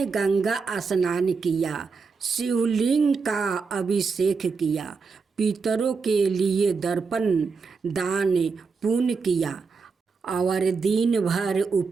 गंगा स्नान किया, शिवलिंग का अभिषेक किया, पितरों के लिए दर्पण दान पुण्य किया और दिन भर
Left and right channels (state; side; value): quieter; left; 5.0 dB